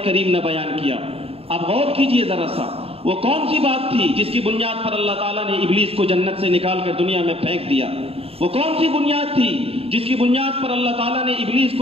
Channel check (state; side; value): late; left; 0.28 ms